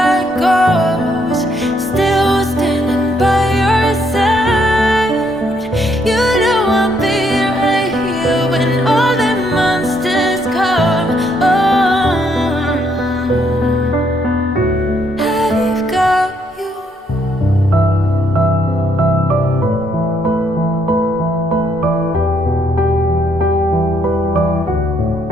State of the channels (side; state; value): both; normal; correlation 0.72